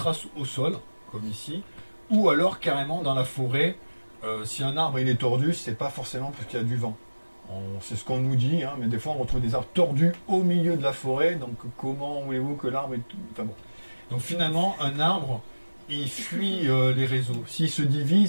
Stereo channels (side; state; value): both; inverted; correlation -1.00